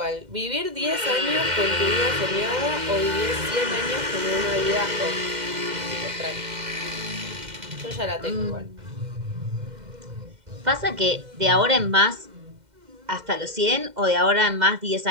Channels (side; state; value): left; late; 2.1 ms